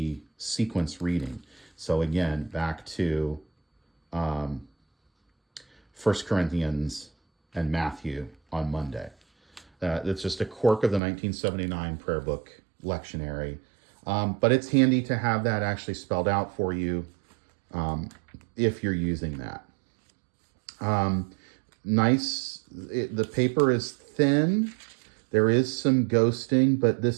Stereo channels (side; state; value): left; drops out; at 11.0 s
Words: sequence reading. So again, back to 1 Corinthians and Matthew on Monday. It's just a quirk of the 1979 prayer book lectionary. But it's handy to have that actually spelled out for you if you're using that. The paper is thin. There is some ghosting, but